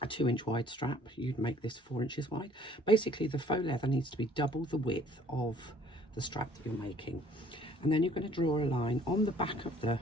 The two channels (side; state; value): both; normal; correlation 0.57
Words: a 2-inch wide strap, you'd make this 4 inches wide. Basically the faux leather needs to be double the width of the strap that you're making, and then you're going to draw a line on the back of the